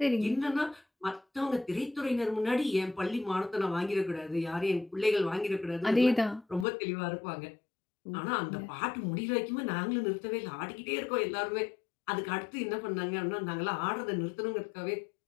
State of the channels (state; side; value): drops out; right; at 6.7 s